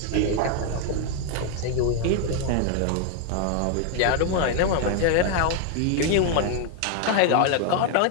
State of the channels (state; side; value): different; both; correlation 0.01